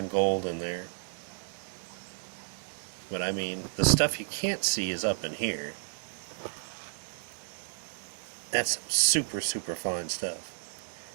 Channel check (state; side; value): silent; left; digital silence